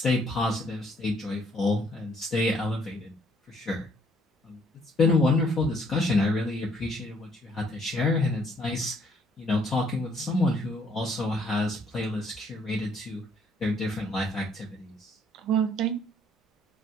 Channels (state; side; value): normal; both; correlation 0.66